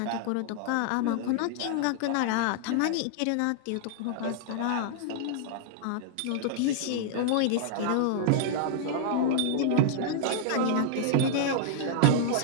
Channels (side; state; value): both; different; correlation -0.01